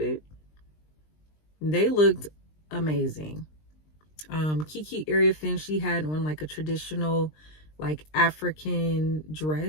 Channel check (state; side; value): late; right; 20 ms